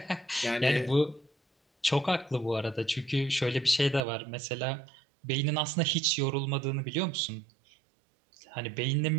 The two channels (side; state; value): left; drops out; at 4.0 s